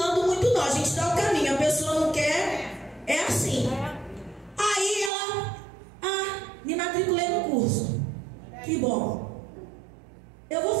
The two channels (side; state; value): left; drops out; at 5.1 s